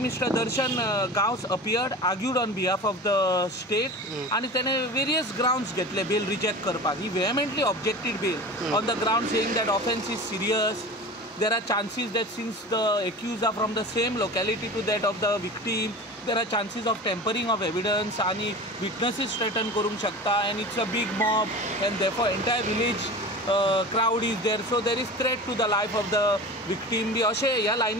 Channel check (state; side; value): normal; both; correlation 0.34